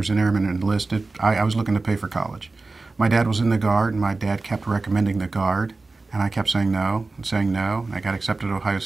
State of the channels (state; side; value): quieter; left; 3.5 dB